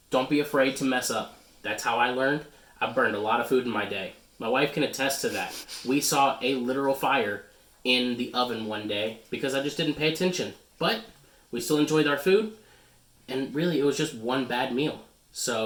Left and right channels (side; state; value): both; identical; correlation 1.00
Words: Don't be afraid to mess up. That's how I learned. I burned a lot of food in my day. My wife can attest to that. We saw a literal fire in the oven one day because I just didn't pay attention. But we still enjoyed our food, and really it was just one bad meal.